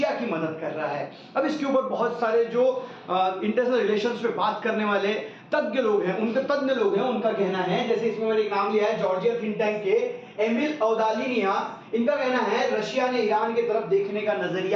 की मदद कर रहा है। अब इसके ऊपर बहुत सारे जो इंटरनेशनल रिलेशंस पे बात करने वाले तज्ञ लोग हैं, उनका कहना है, जैसे इसमें मैंने एक नाम लिया है जॉर्जिया थिंक टैंक के एमिल औदालिनिया। इनका कहना है रशिया ने ईरान की तरफ देखने का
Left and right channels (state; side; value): identical; both; correlation 1.00